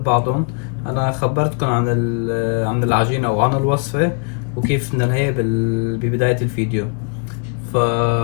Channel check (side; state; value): right; quieter; 37.7 dB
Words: بعضهم. انا خبرتكم عن العجينه وعن الوصفه وكيف بدنا هي ببدايه الفيديو. ف